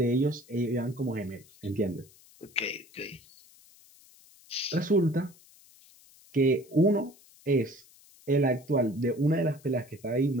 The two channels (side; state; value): left; noise; hiss, 26 dB below the sound